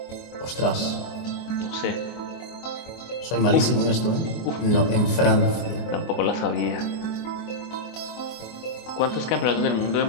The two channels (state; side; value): late; right; 24 ms